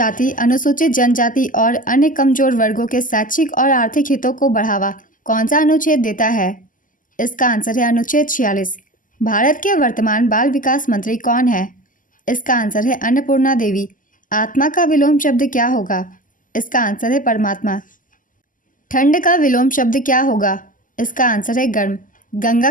अनुसूचित जनजाति और अन्य कमजोर वर्गों के शैक्षिक और आर्थिक हितों को बढ़ावा कौन सा अनुच्छेद देता है? इसका आंसर है अनुच्छेद 46। भारत के वर्तमान बाल विकास मंत्री कौन है? इसका आंसर है अन्नपूर्णा देवी। आत्मा का विलोम शब्द क्या होगा? इसका आंसर है परमात्मा। ठंड का विलोम शब्द क्या होगा? इसका आंसर है गर्म। गंगा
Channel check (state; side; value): late; right; 0.38 ms